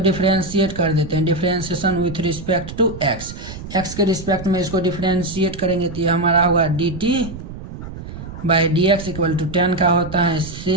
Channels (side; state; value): right; noise; rumble, 11 dB below the sound